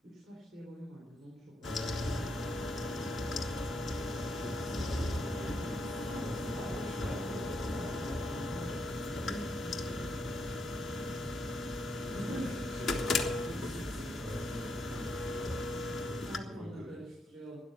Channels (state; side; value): normal; both; correlation 0.78